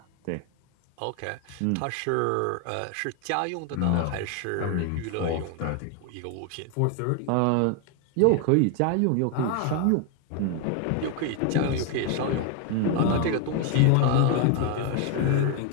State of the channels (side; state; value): both; different; correlation 0.01